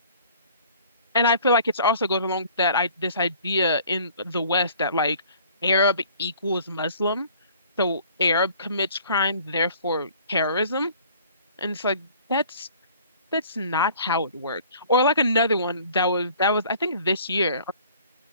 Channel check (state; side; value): inverted; both; correlation -0.52